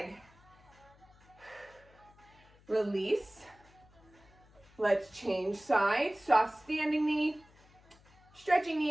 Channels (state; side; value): noise; left; hum, 27 dB below the sound